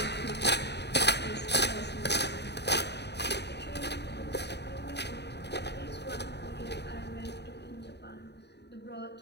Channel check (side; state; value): right; late; 0.49 ms